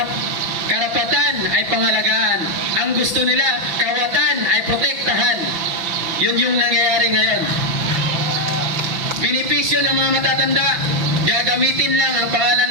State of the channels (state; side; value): late; left; 5.9 ms